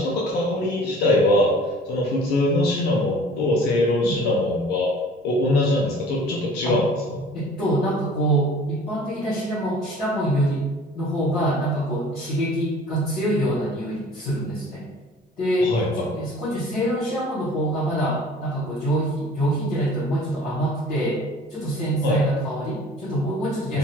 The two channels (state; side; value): normal; both; correlation 0.48